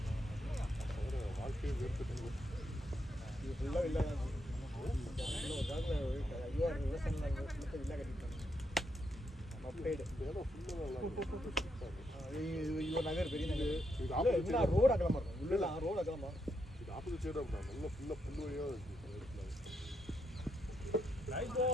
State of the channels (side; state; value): both; normal; correlation 0.80